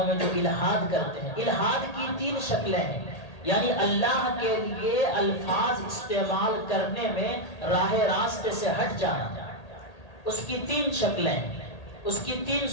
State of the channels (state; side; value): late; right; 1.8 ms